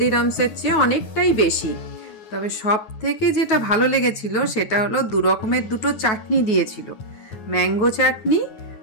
চেয়ে অনেকটাই বেশি। তবে সব থেকে যেটা ভালো লেগেছিল সেটা হলো 2 রকমের 2টো চাটনি দিয়েছিল, ম্যাঙ্গো চাটনি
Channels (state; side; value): late; right; 9.3 ms